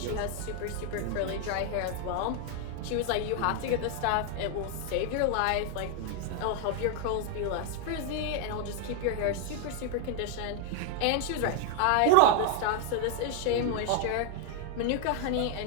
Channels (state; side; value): different; both; correlation 0.00